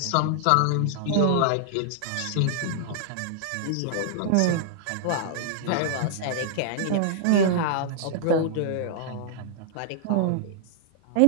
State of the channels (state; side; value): different; both; correlation -0.01